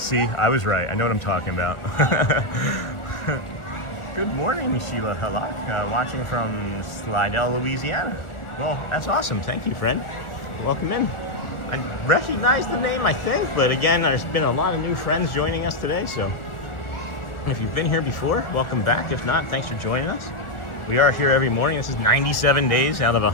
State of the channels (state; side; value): late; right; 1.4 ms